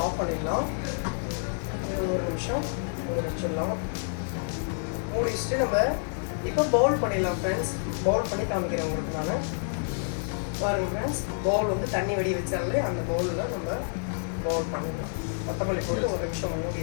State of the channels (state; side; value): silent; right; 59 dB below the other